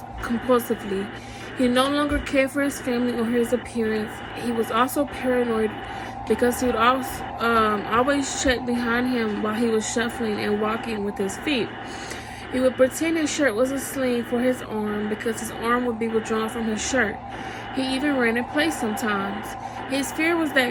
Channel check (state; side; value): identical; both; correlation 1.00